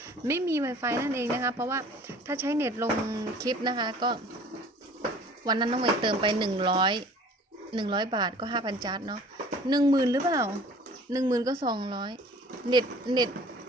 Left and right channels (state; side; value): normal; both; correlation 0.48